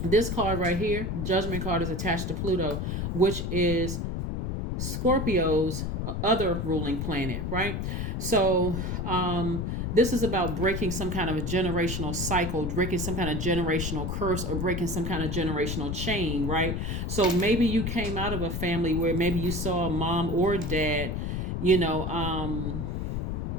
right here, Judgment card, is attached to Pluto, which is Scorpio's other ruling planet, right? So this is about breaking some kind of a generational cycle, breaking some kind of generational curse, or breaking some kind of generational chain, right? So maybe you came out of a family where maybe you saw a mom or dad,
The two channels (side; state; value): left; noise; rumble, 2 dB below the sound